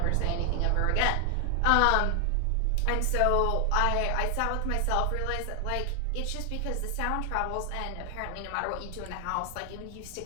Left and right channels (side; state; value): both; different; correlation 0.00